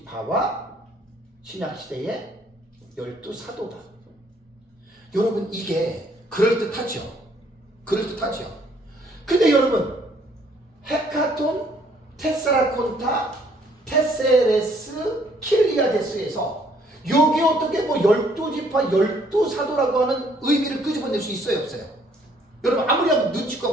신약시대의 12사도다. 여러분 이게 그럴듯하죠? 그럴듯하죠? 근데 여러분 헤카톤, 테스라콘타, 테세레스, 킬리아데스에서 여기 어떻게 뭐 12지파, 12사도라고 하는 의미를 끄집어낼 수 있어요? 없어요? 여러분 아무리 한번 눈치껏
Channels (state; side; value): normal; both; correlation 0.64